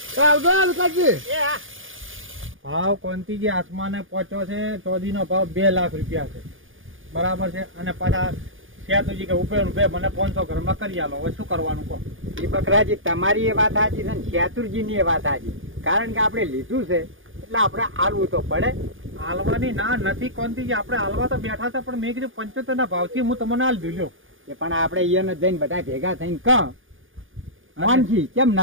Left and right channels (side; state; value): left; late; 0.58 ms